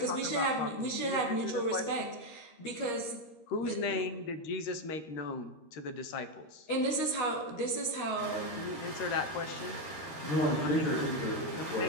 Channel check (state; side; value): late; right; 13 ms